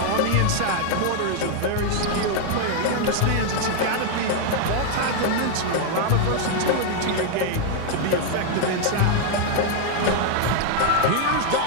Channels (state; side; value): different; both; correlation 0.00